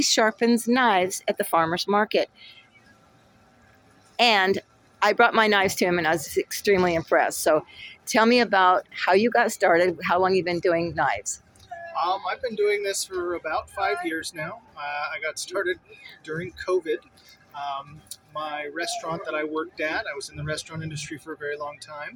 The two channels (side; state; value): both; identical; correlation 1.00